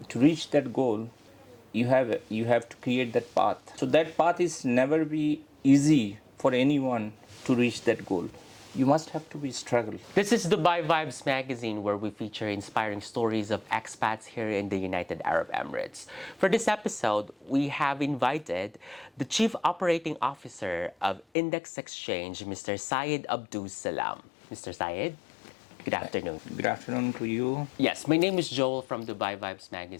reach that goal, you have to create that path. So that path is never be easy for anyone to reach that goal. You must have to be struggle. This is Dubai Vibes magazine, where we feature inspiring stories of expats here in the United Arab Emirates. For this episode, we have invited the Chief Operating Officer of Index Exchange, Mr. Syed Abdus Salam. Mr. Syed, good afternoon. Good afternoon to you. Yes, my name is Joel from Dubai Vibes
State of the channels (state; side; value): drops out; right; at 21.2 s